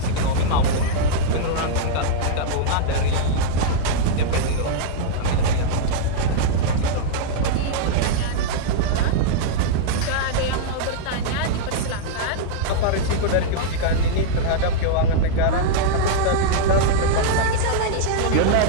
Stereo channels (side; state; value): both; different; correlation -0.02